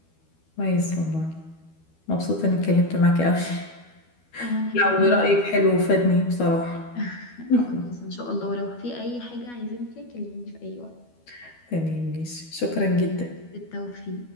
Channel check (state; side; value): late; right; 12 ms